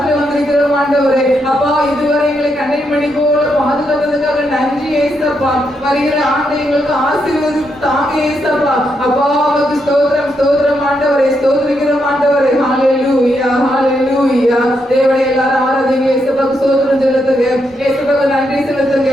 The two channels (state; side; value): normal; both; correlation 0.80